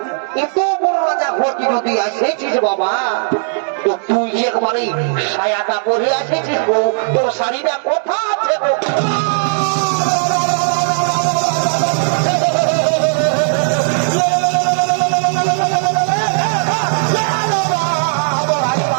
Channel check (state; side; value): silent; left; digital silence